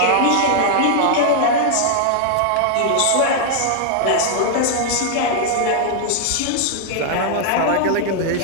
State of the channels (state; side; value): different; both; correlation -0.01